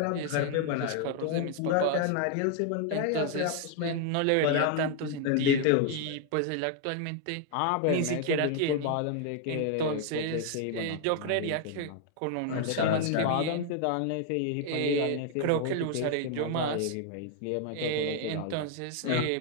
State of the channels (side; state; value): both; different; correlation 0.00